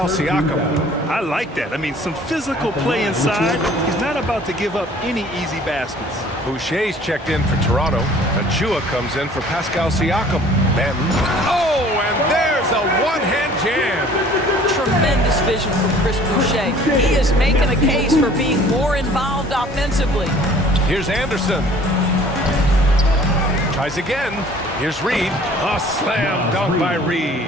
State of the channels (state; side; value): normal; both; correlation 0.52